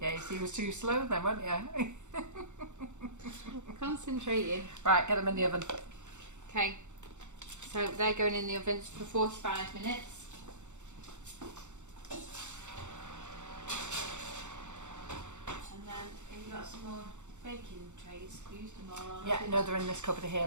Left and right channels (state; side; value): late; left; 0.84 ms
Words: Yeah, you see, you was too slow then, weren't you? Concentrating. Right, get them in the oven. Okay. So they're going in the oven for 45 minutes. And then you've got some more baking trays. Used them all on. Yeah, no, they're in this cupboard here,